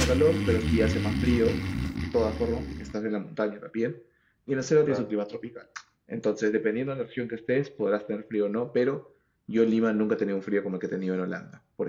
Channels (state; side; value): identical; both; correlation 1.00